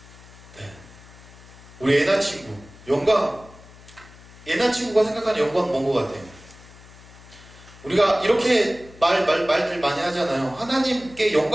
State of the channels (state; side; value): noise; left; hum, 21 dB below the sound